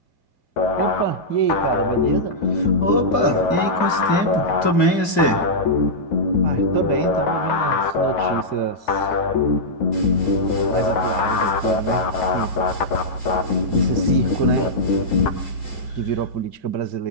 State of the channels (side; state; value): right; late; 2.2 ms